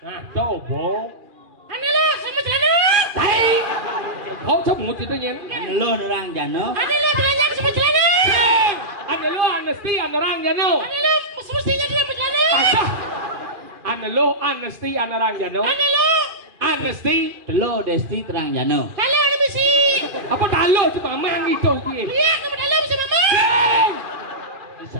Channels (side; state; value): left; late; 2.5 ms